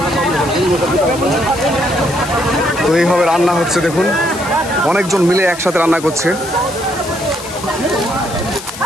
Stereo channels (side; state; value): left; noise; hiss, 13 dB below the sound